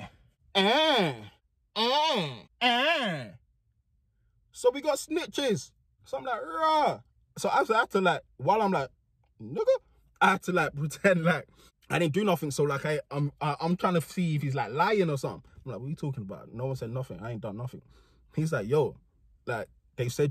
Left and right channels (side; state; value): both; identical; correlation 1.00